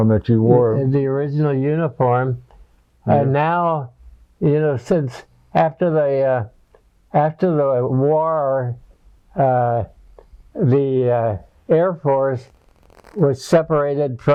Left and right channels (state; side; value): identical; both; correlation 1.00